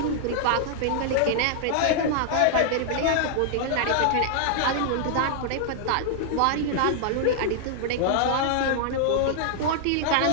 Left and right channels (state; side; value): different; both; correlation -0.01